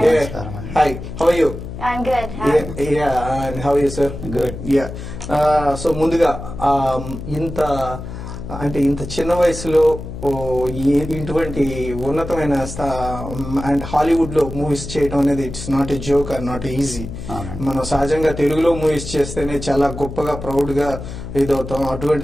Hi. How are you? I'm good. And how are you, sir? Good. Yeah. So ముందుగా ఇంత చిన్న వయసులో ఇటువంటి ఉన్నతమైన అండ్ హాలీవుడ్ లో మూవీస్ చేయడం అనేది it's not a joke or not easy. మనం సహజంగా తెలుగులో మూవీస్ చేస్తేనే చాలా గొప్పగా ప్రౌడ్ గా ఇదవుతాం.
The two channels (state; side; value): noise; left; hum, 9 dB below the sound